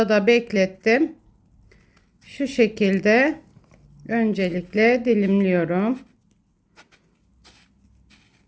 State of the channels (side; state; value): both; identical; correlation 1.00